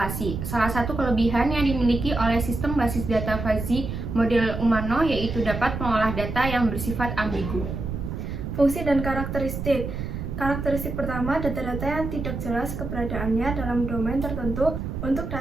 Salah satu kelebihan yang dimiliki oleh sistem basis data fuzzy model Umano yaitu dapat mengolah data yang bersifat ambigu. Fungsi dan karakteristik. Karakteristik pertama, data-data yang tidak jelas keberadaannya dalam domain tertentu. Untuk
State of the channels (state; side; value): noise; right; rumble, 5 dB below the sound